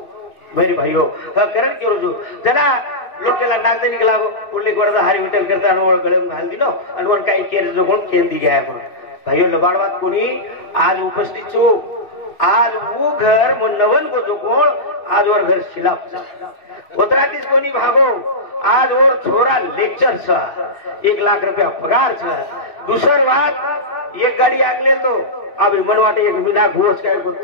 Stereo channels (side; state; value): right; late; 3.4 ms